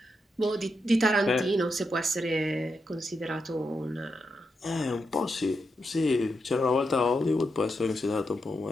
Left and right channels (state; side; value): normal; both; correlation 0.85